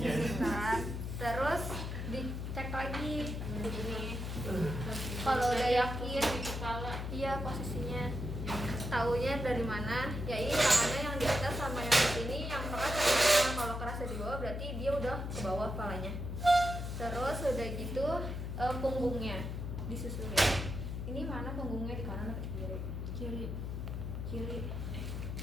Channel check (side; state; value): left; noise; hum, 4 dB below the sound